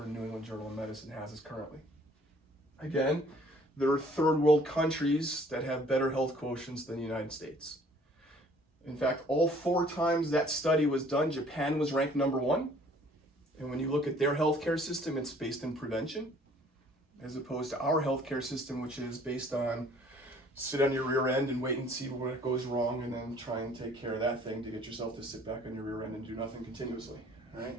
New England Journal of Medicine has us currently. Again, there are third world countries that have better health quotients than the United States. In fact, all 4 times that study was done, Japan was ranked number 1. And when you look at their healthcare system, it's based in prevention, as opposed to our healthcare system, which is based on sit on your rear end and wait and see what goes wrong, and then try and take care of that thing to get yourself to sit back on your rear end and do nothing continuously, right?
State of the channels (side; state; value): both; normal; correlation 0.57